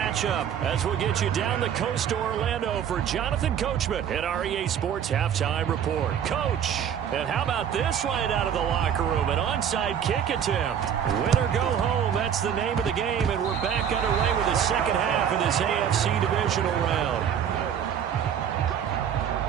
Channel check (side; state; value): left; quieter; 8.7 dB